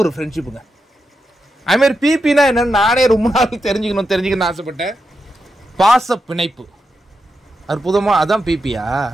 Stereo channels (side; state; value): both; normal; correlation 0.87